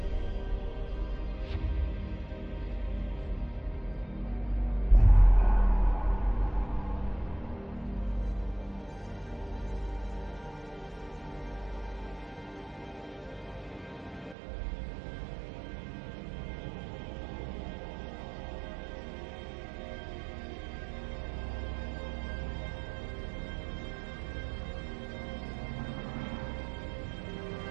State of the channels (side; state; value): left; drops out; at 14.4 s